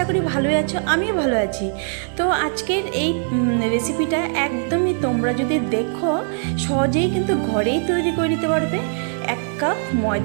করি ভালোই আছো, আমিও ভালো আছি। তো আজকের এই রেসিপিটা একদমই তোমরা যদি দেখো সহজেই কিন্তু ঘরেই তৈরি করে নিতে পারবে। 1 কাপ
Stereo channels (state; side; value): silent; left; 57 dB below the other